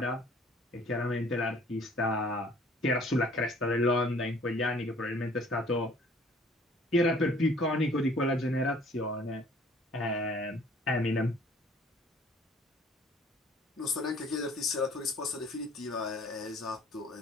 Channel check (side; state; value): both; normal; correlation 0.55